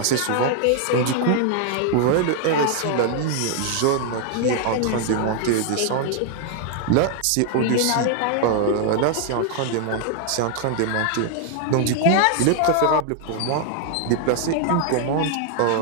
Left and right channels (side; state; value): both; different; correlation 0.00